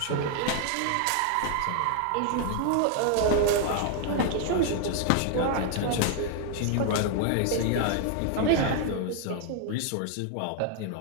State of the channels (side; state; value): both; different; correlation 0.00